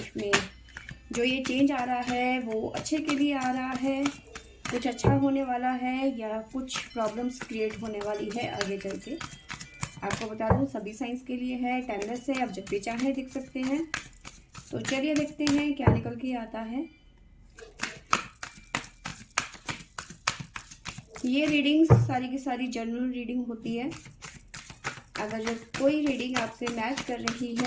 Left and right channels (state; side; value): identical; both; correlation 1.00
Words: में। जो ये चेंज आ रहा है वो अच्छे के लिए आ रहा है, कुछ अच्छा होने वाला है या कुछ प्रॉब्लम्स क्रिएट होने वाली है आगे चल के। आपको बता दूँ सभी साइंस के लिए है, टाइमलेस है, आप जब भी चाहें देख सकते हैं। तो चलिए देखते हैं क्या निकल के आता है। ये रीडिंग्स सारी की सारी जनरल रीडिंग होती है। अगर जो कोई रीडिंग आपसे मैच कर रही